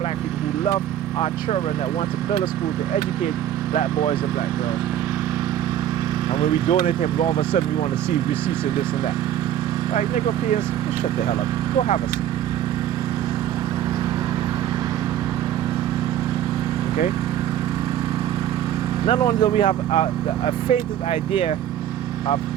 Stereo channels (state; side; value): quieter; left; 11.1 dB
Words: people, who loved our children, that wants to build a school to educate black boys and black girls. And when we donate to him, all of a sudden we want to see receipts and this and that. Like, Negropeans, just shut the hell up. Go have a seat. Okay? Not only do we have a fainted idea of